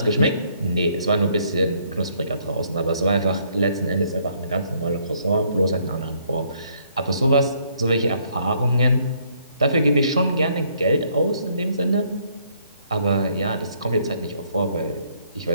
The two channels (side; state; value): both; inverted; correlation -0.67